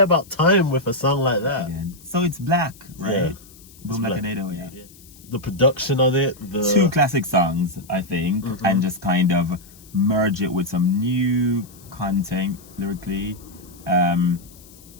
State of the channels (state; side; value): noise; left; hiss, 23 dB below the sound